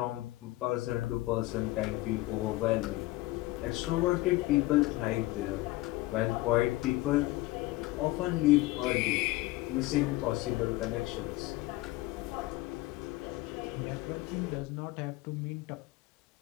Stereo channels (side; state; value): right; quieter; 19.1 dB